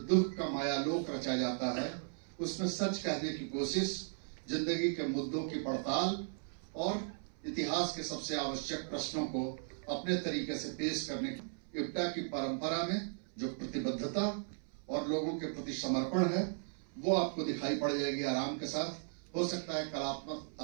का मायालोक रचा जाता है, उसमें सच कहने की कोशिश, जिंदगी के मुद्दों की पड़ताल और इतिहास के सबसे आवश्यक प्रश्नों को अपने तरीके से पेश करने की इप्टा की परंपरा में जो प्रतिबद्धता और लोगों के प्रति समर्पण है वो आपको दिखाई पड़ जाएगी आराम के साथ। हो सकता है कलात्मक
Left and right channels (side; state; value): left; silent; 53 dB below the other